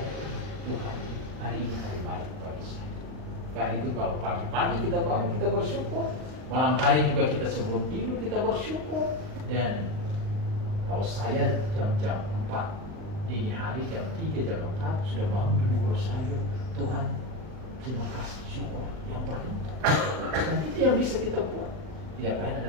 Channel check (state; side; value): late; left; 39 ms